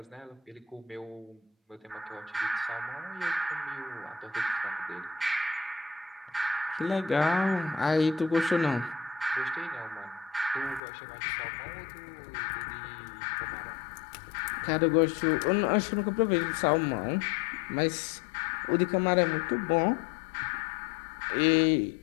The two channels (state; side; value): drops out; right; at 10.8 s